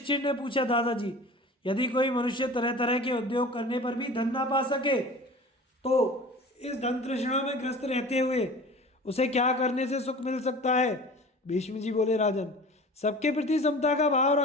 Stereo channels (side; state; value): both; normal; correlation 0.39